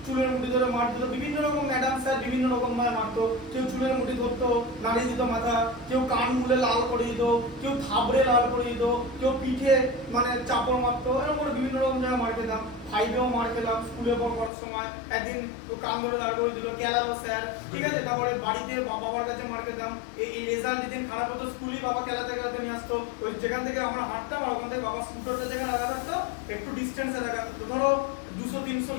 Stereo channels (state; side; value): drops out; right; at 14.5 s